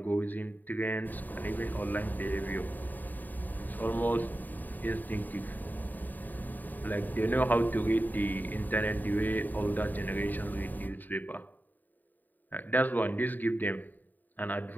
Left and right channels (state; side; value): late; right; 0.086 ms